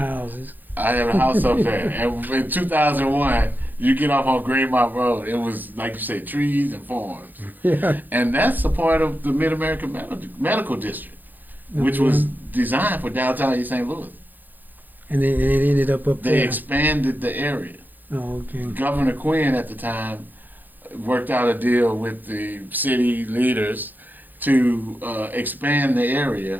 I had a house up there. And in 2001, you get off on Greymount Road, it was, like you say, trees and farms. Yeah. And that's a part of the Mid-American Medical District. which was designed for downtown East St. Louis. And then it ended up there. They expanded the area. Oh, okay. Governor Quinn at the time worked out a deal with the city leaders to expand the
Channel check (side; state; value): left; late; 0.086 ms